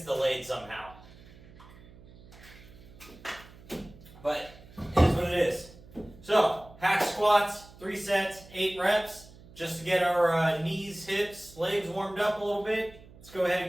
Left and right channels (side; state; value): right; noise; hum, 21 dB below the sound